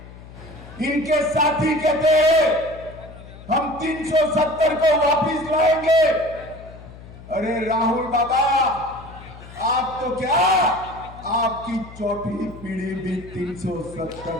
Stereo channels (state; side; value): noise; left; hum, 17 dB below the sound